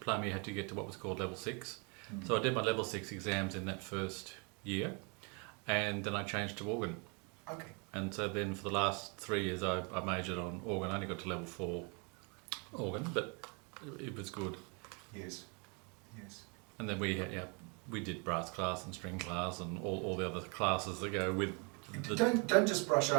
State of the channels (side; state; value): left; quieter; 34.2 dB